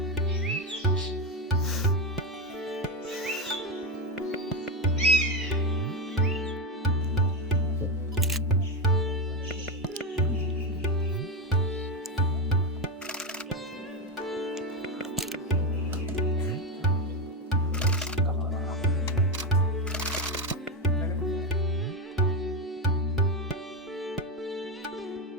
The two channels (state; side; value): normal; both; correlation 0.12